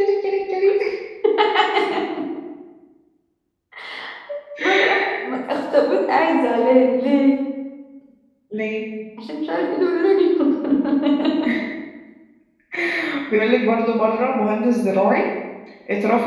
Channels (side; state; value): both; identical; correlation 1.00